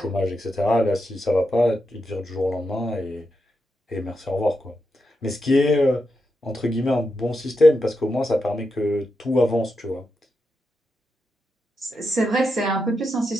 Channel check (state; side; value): normal; both; correlation 0.86